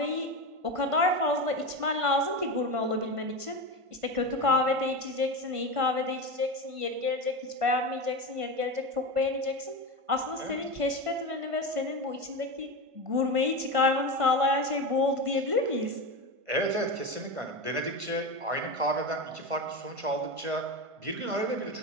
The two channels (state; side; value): late; left; 1.5 ms